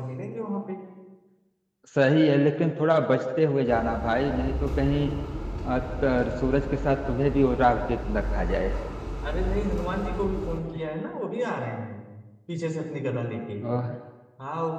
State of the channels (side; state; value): both; identical; correlation 1.00